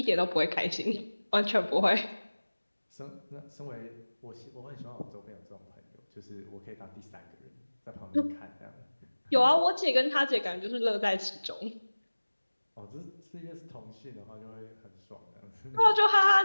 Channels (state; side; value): inverted; both; correlation -1.00